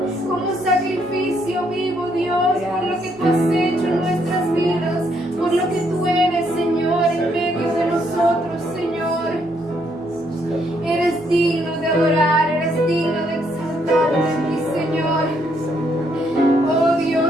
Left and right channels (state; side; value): normal; both; correlation 0.72